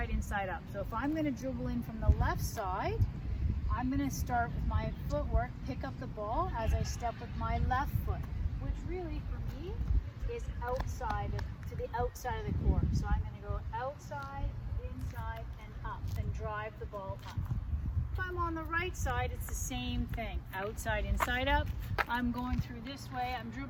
inside, up. So if I'm going to dribble in from the left side, I'm going to start with my footwork, pick up the ball as I step with my left foot, which really for me is to the outside of the court. So I'm going to go outside, inside, and up, and drive the ball up. If I'm on the right side, it's the same thing. Outside, inside, up. I'm going through this way. I'm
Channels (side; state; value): both; identical; correlation 1.00